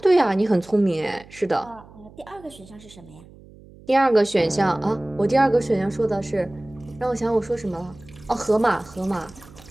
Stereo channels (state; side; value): noise; right; hum, 22 dB below the sound